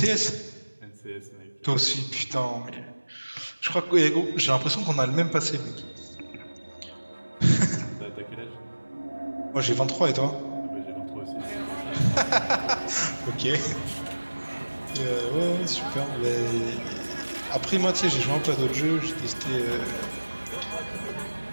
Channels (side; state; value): both; inverted; correlation -1.00